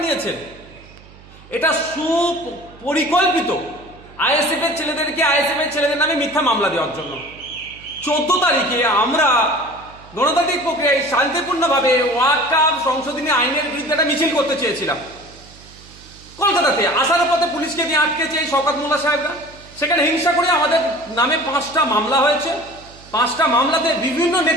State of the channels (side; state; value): right; noise; hum, 22 dB below the sound